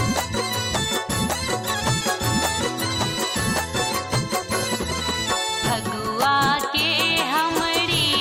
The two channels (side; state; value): both; identical; correlation 1.00